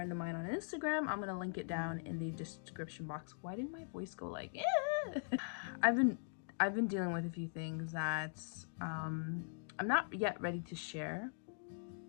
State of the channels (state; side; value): silent; right; digital silence